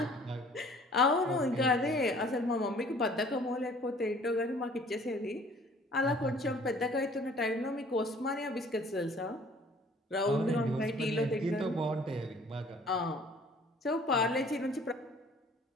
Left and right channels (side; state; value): both; normal; correlation 0.54